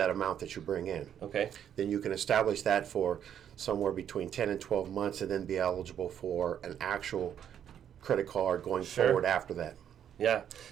amount that you bring in. Okay. Then you can establish that for somewhere between 10 and 12 months and then be eligible for an actual credit card going Sure. forward after that. Yeah.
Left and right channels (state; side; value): quieter; left; 9.3 dB